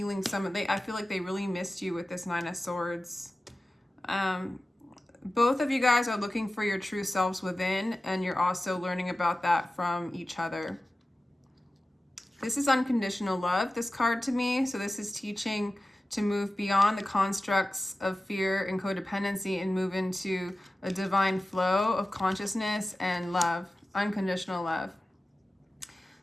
I feel like they really missed you with this Nine of Swords. Both of you guys are looking for your true selves within, and you're also learning about that from each other. This is unconditional love, this card to me. So this is teaching to move beyond the constructs of fear and codependency and move into a divine flow of consciousness and love, unconditional love.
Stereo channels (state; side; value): normal; both; correlation 0.95